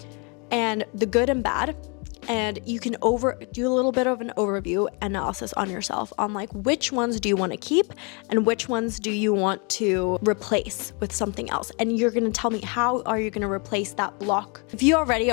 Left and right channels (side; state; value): right; quieter; 33.4 dB